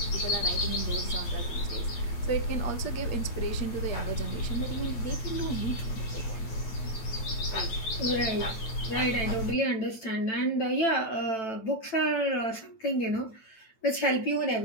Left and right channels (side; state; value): right; late; 9.0 ms